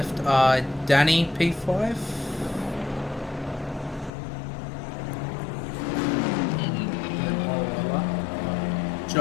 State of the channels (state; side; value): drops out; right; at 4.1 s